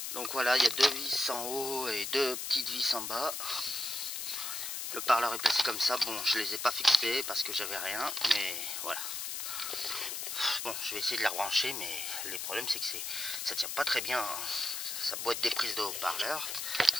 Donc voilà, il y a deux vis en haut et deux petites vis en bas. Le parleur est placé comme ça. Bon, je les ai pas fixés parce que j'avais rien, mais voilà. Bon, je vais essayer de les rebrancher, mais le problème c'est que ça tient pas très bien. Hein. Sa boîte des prises de haut-parleur,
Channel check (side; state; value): left; noise; hiss, 4 dB below the sound